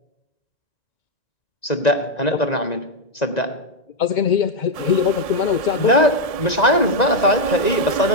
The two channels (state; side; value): late; right; 1.7 ms